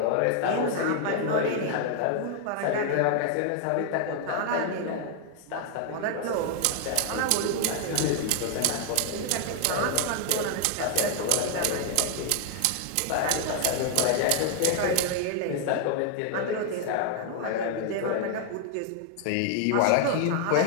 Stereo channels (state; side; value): different; both; correlation 0.00